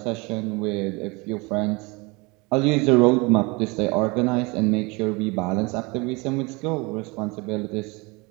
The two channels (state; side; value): quieter; left; 26.8 dB